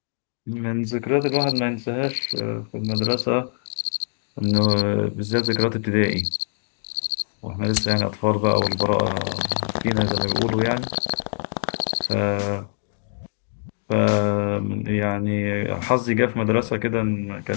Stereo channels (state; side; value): silent; right; digital silence